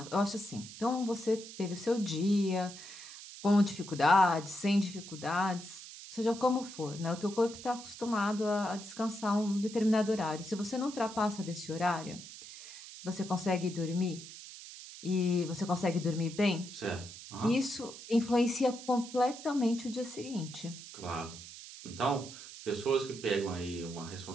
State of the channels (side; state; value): right; noise; hiss, 14 dB below the sound